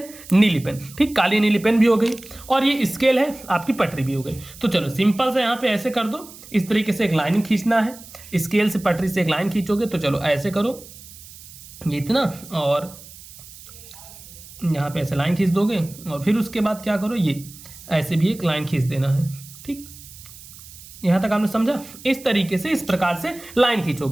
नीली पेन, ठीक, काली नीली पेन भी हो गई और ये स्केल है, आपकी पटरी भी हो गई। तो चलो सिंपल से यहाँ पे ऐसे कर दो, इस तरीके से एक लाइन खींचना है, स्केल से पटरी से एक लाइन खींचोगे तो चलो ऐसे करो ये इतना, और यहाँ पे ऐसे लाइन खींच दोगे और फिर उसके बाद क्या करो ये ऐसे भी एक लाइन खींच देना है, ठीक, यहां तक आपने समझा। इस तरीके से इस प्रकार से लाइन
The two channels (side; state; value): right; noise; hiss, 18 dB below the sound